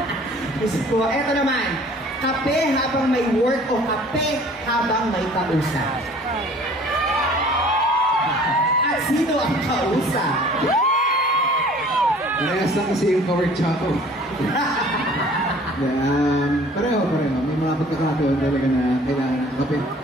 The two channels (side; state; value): both; normal; correlation 0.51